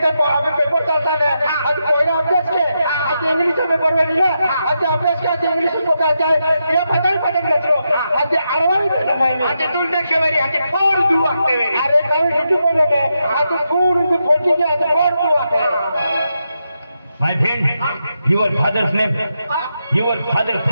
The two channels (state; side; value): inverted; both; correlation -0.85